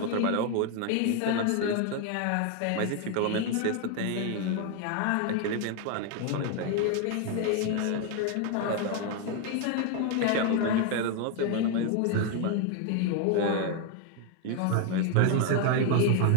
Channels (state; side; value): different; both; correlation 0.01